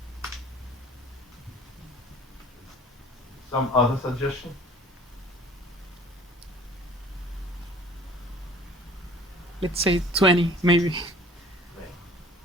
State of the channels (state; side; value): normal; both; correlation 0.49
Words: Some other suggestion? Let's say 20, maybe.